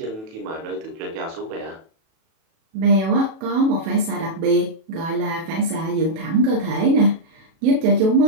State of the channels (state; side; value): late; left; 37 ms